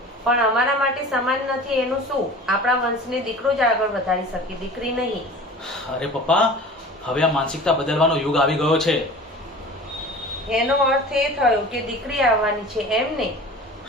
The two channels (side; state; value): both; normal; correlation 0.39